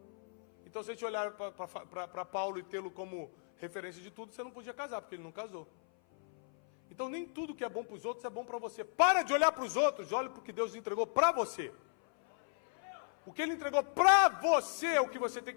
Então se a gente olhar para Paulo e tê-lo como referência de tudo, você não podia casar, porque ele não casou. Então nem tudo que é bom para os outros é bom para você. Para de olhar para os outros, olha para o que Deus entregou para você. O que ele entregou para você é o que você tem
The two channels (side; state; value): right; silent; 54 dB below the other